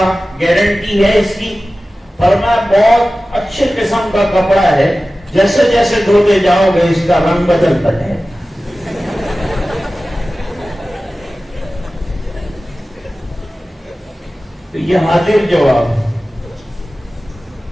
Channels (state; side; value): normal; both; correlation 0.96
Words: گارنٹی ہے اس کی؟ فرمایا بہت اچھے قسم کا کپڑا ہے، جیسے جیسے دھوتے جاؤ گے اس کا رنگ بدلتا ہے۔ تو یہ حاضر جواب۔